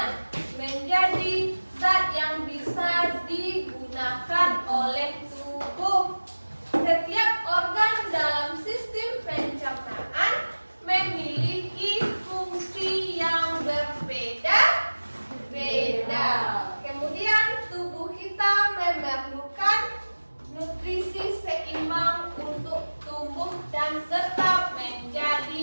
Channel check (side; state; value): both; inverted; correlation -1.00